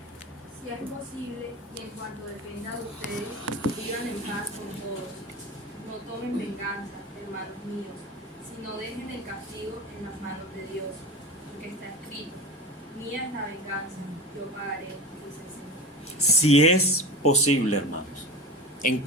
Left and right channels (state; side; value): normal; both; correlation 0.29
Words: es posible, y en cuanto dependa de ustedes, vivan en paz con todos. No tomen venganza, hermanos míos, sino dejen el castigo en las manos de Dios, porque está escrito: mía es la venganza, yo pagaré, dice el Señor. Si es posible, hermanos, en